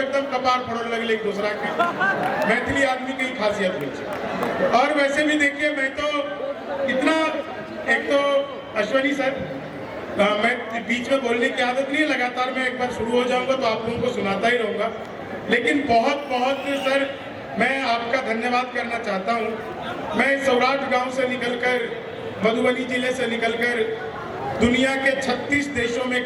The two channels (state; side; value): identical; both; correlation 1.00